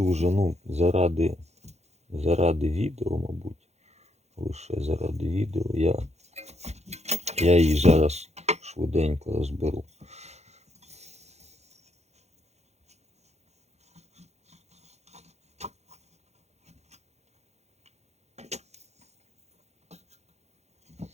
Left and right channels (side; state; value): left; late; 0.32 ms